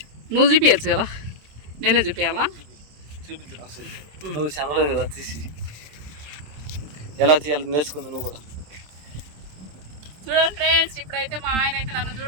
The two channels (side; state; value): left; late; 27 ms